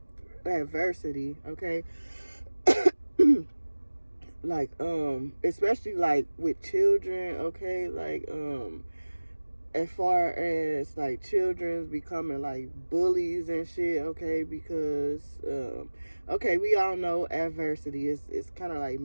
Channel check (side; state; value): both; inverted; correlation -1.00